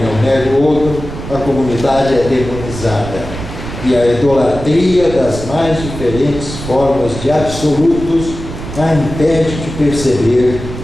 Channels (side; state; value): right; noise; rumble, 9 dB below the sound